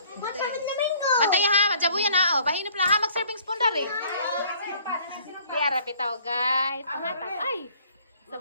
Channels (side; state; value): both; inverted; correlation -0.57